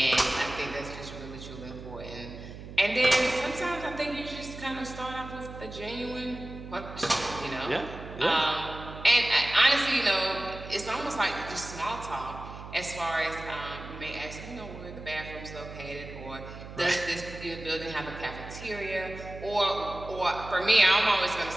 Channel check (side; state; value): right; noise; hum, 12 dB below the sound